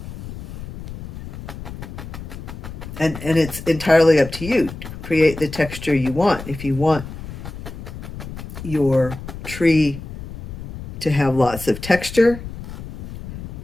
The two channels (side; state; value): left; noise; rumble, 11 dB below the sound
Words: And it's entirely up to you to create the texture you want. If you want your tree to have lots of texture,